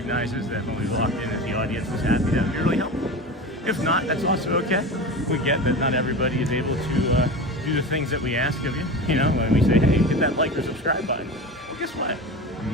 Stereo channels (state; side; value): normal; both; correlation 0.29